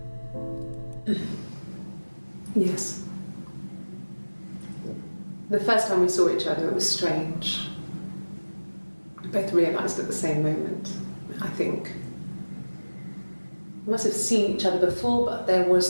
Yes. The first time we saw each other, it was strange. We both realised at the same moment, I think. We must have seen each other before, but there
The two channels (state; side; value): inverted; both; correlation -1.00